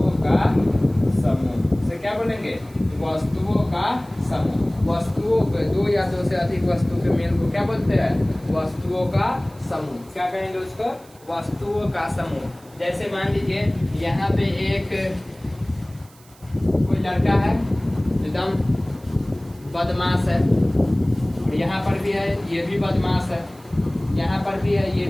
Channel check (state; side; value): noise; right; hiss, 26 dB below the sound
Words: का समूह। से क्या बोलेंगे, वस्तुओं का समूह। वस्तुओं के दो या दो से अधिक वस्तु के मेल को क्या बोलते हैं, वस्तुओं का समूह। क्या कहेंगे उसको, वस्तुओं का समूह। जैसे मान लीजिए यहाँ पे एक कोई लड़का है, एकदम बदमाश है, और यहाँ पर भी है, ये भी बदमाश है, यहाँ पर भी है, ये